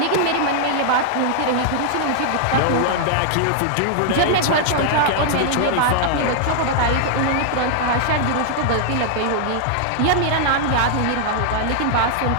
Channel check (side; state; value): both; different; correlation -0.01